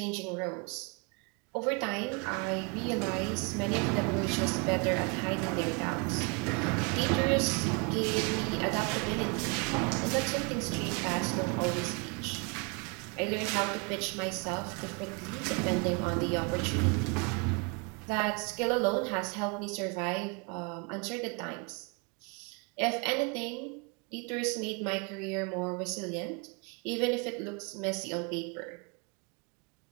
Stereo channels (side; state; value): left; quieter; 32.7 dB